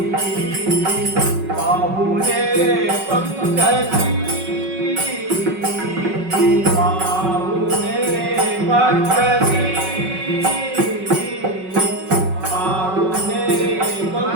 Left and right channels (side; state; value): left; late; 5.4 ms